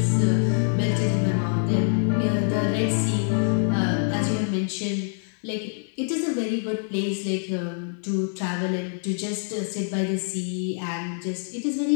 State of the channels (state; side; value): silent; right; 62 dB below the other